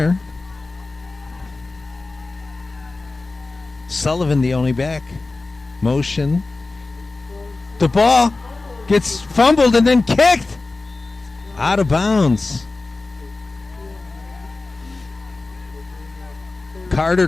Sullivan the only back. Motion. The ball gets fumbled and then kicked. Out of bounds.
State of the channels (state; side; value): quieter; right; 3.5 dB